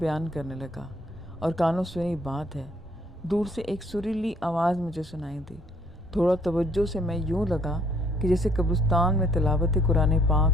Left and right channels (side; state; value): both; normal; correlation 0.64